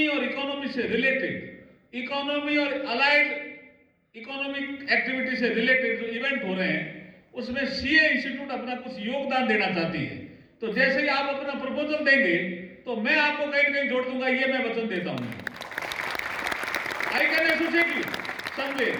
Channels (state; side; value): identical; both; correlation 1.00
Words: और इकोनॉमी से रिलेटेड, इकोनॉमी और अलाइड इकोनॉमिक एक्टिविटी से रिलेटेड जो इवेंट हो रहे हैं, उसमें सीए इंस्टीट्यूट अपना कुछ योगदान देना चाहती है। तो जैसे ही आप अपना प्रपोजल देंगे, तो मैं आपको कहीं ना कहीं जोड़ दूंगा, ये मैं वचन देता हूं। I can associate you someway.